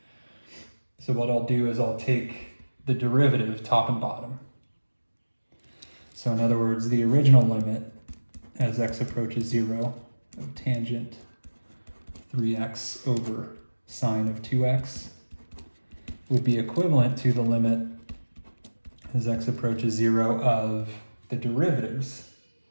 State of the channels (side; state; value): both; inverted; correlation -1.00